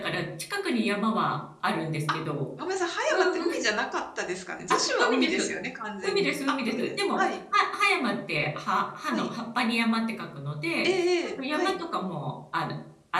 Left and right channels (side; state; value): both; identical; correlation 1.00